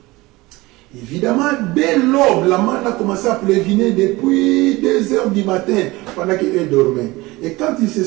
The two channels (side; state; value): left; quieter; 21.0 dB